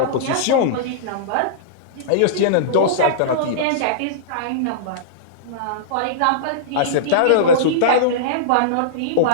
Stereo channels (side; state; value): both; different; correlation -0.03